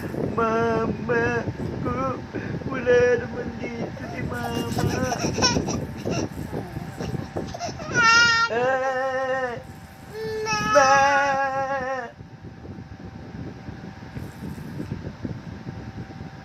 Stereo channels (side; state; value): both; identical; correlation 1.00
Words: Mama ko, wala naman dito si mama. Ma!